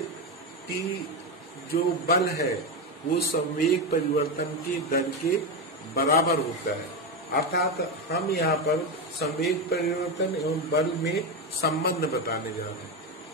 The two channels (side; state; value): both; normal; correlation 0.13